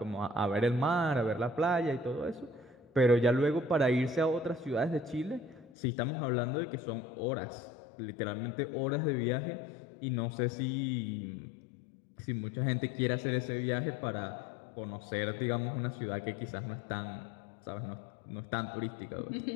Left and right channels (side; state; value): right; drops out; at 5.7 s